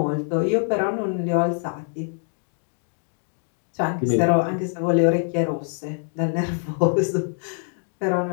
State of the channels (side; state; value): right; silent; 62 dB below the other